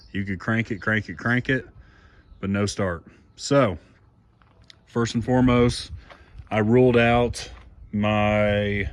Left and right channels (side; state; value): both; identical; correlation 1.00